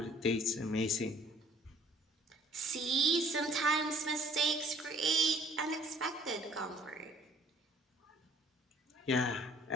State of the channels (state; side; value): normal; both; correlation 0.56